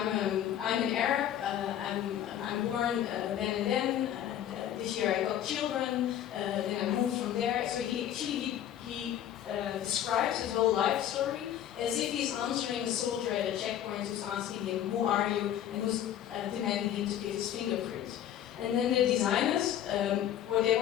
an Arab, I'm born then and then, this year I got children, then I moved from there. So he describes his whole life story as if he's answering a soldier at a checkpoint who's asking him, who are you, and who's demanding him to give his fingerprint. And then the designers, what they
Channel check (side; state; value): right; quieter; 11.0 dB